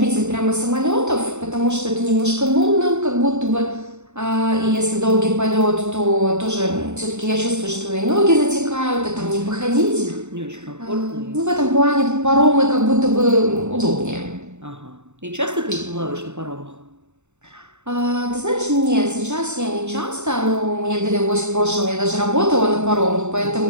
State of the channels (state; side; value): late; left; 0.83 ms